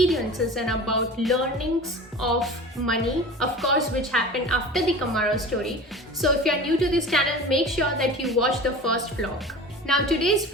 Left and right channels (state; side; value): normal; both; correlation 0.36